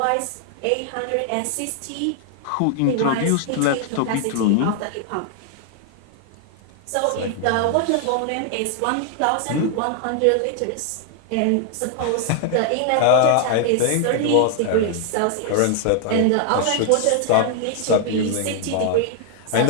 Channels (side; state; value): both; different; correlation 0.00